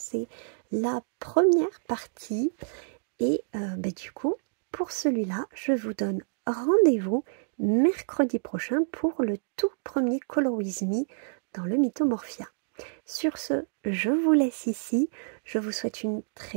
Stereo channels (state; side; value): silent; left; digital silence